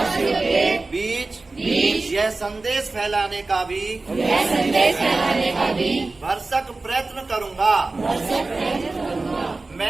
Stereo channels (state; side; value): quieter; left; 3.4 dB